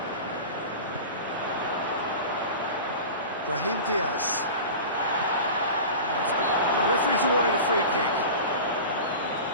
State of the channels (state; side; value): inverted; both; correlation -0.33